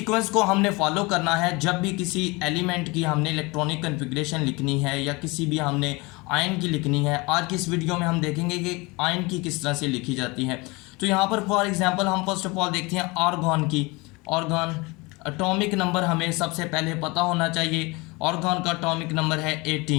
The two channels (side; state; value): right; quieter; 25.3 dB